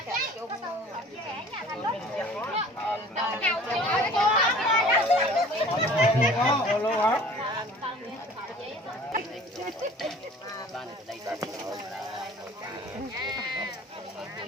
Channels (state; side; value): normal; both; correlation 0.48